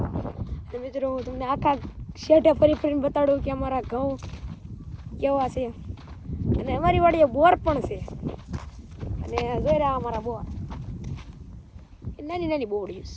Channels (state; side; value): identical; both; correlation 1.00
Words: અને મિત્રો હું તમને આખા શેઢે ફરીને બતાડું કે અમારા ઘઉં કેવા છે. અને અમારી વાડીએ બોર પણ છે. અને જોઈ રહ્યા અમારા બોર નાની નાની બોડીઓ